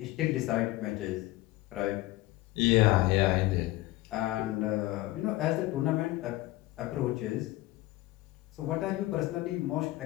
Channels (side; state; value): right; quieter; 18.4 dB